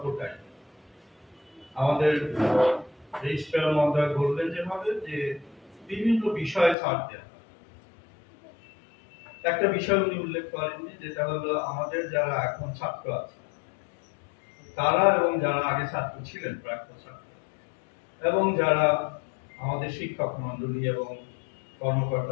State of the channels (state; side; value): drops out; right; at 6.8 s